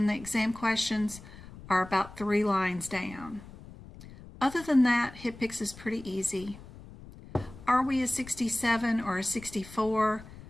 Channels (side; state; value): left; noise; rumble, 17 dB below the sound